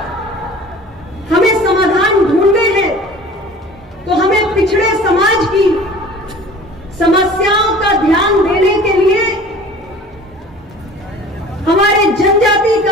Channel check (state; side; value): normal; both; correlation 0.44